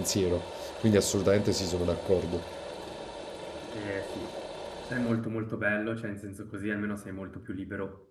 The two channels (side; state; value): both; identical; correlation 1.00